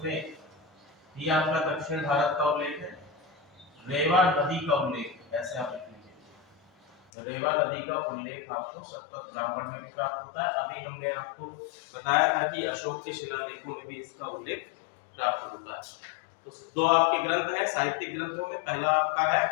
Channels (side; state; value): right; drops out; at 7.0 s